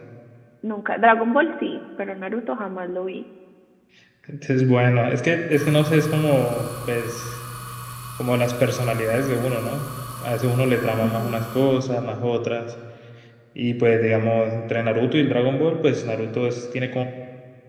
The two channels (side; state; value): both; identical; correlation 1.00